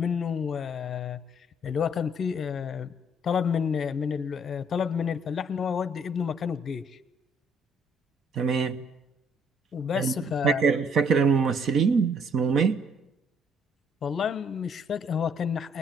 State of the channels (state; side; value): normal; both; correlation 0.64